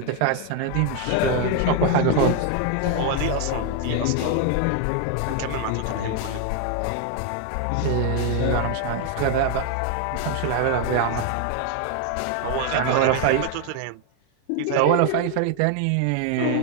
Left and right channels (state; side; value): different; both; correlation 0.01